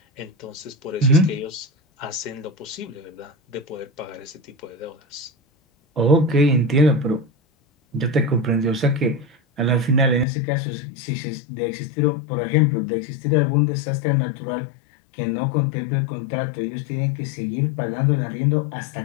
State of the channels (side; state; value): right; drops out; at 10.2 s